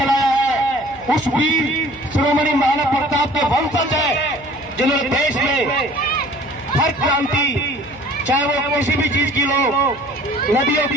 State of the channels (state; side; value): noise; left; hum, 22 dB below the sound